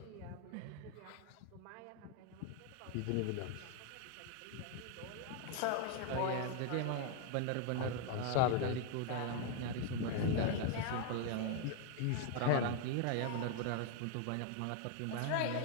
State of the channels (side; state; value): both; different; correlation 0.01